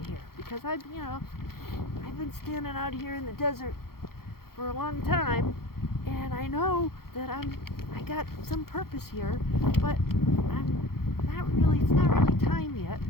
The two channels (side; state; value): right; late; 0.94 ms